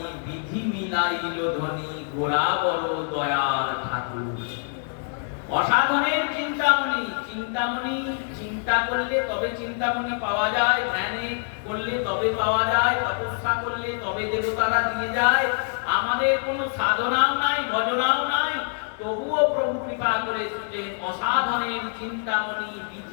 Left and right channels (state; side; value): silent; right; 62 dB below the other